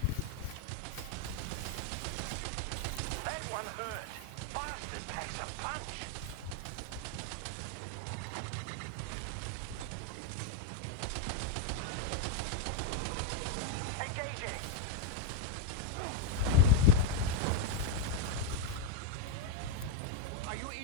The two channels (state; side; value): different; both; correlation 0.02